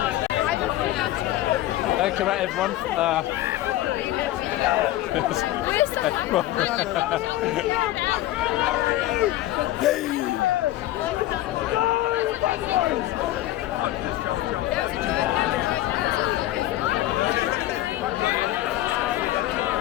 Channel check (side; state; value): right; quieter; 15.1 dB